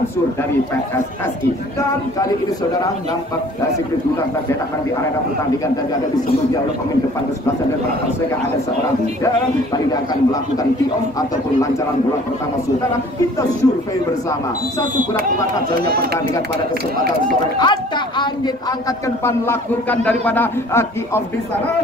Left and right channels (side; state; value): both; normal; correlation 0.52